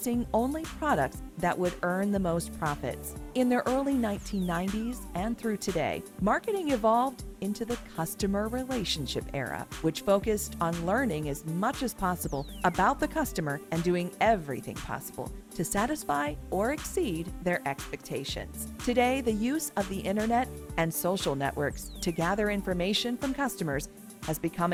only products that would earn the most profits. In the early 1990s and through today, marketing evolved into the customer relationship era, which focused on learning as much as possible about the customer and doing everything possible to satisfy or exceed their expectations. Today, the use of the internet and social networks to gather information from customers has become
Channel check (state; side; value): identical; both; correlation 1.00